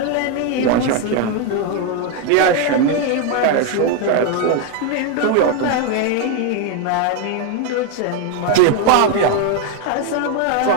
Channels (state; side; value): different; both; correlation 0.01